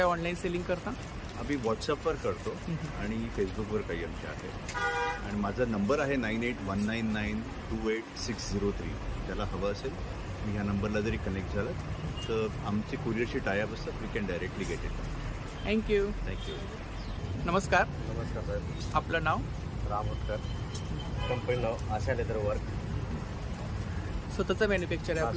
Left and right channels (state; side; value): identical; both; correlation 1.00